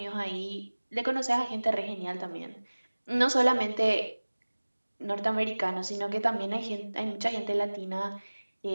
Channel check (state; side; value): inverted; both; correlation -1.00